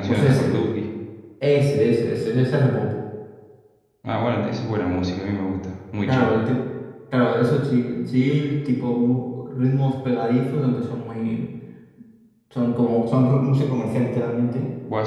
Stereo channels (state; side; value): identical; both; correlation 1.00